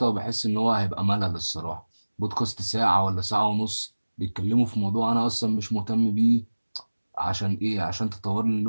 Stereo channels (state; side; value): inverted; both; correlation -1.00